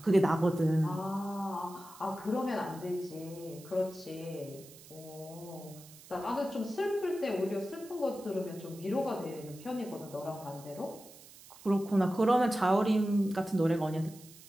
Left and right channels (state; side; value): noise; right; hiss, 20 dB below the sound